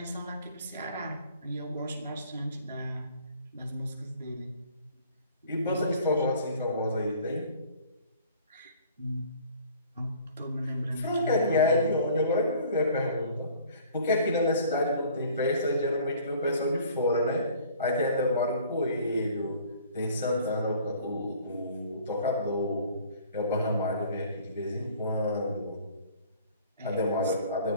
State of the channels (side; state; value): both; inverted; correlation -0.52